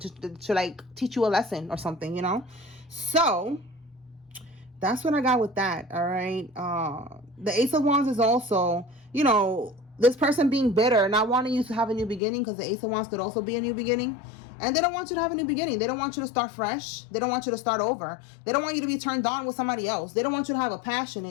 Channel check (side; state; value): right; drops out; at 12.2 s